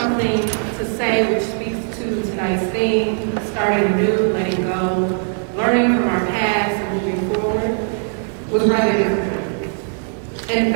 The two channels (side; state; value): left; silent; 62 dB below the other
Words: to say which speaks to tonight's theme, starting new, letting go, learning from our past and moving forward, was rather difficult. In